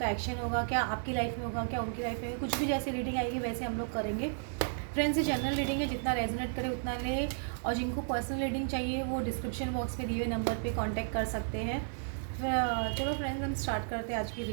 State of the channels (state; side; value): silent; left; digital silence